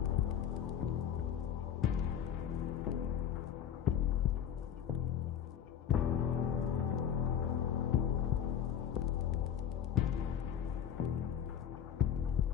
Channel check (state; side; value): quieter; right; 9.1 dB